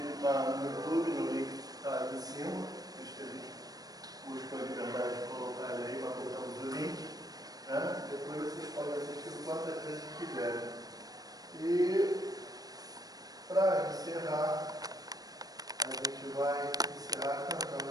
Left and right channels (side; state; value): left; late; 0.18 ms